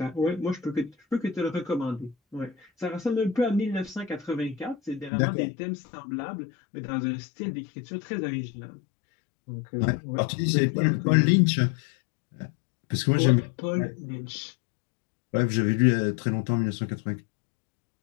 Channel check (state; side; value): drops out; right; at 5.1 s